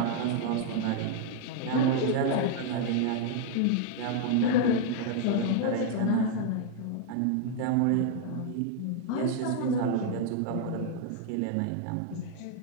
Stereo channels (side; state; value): both; different; correlation 0.00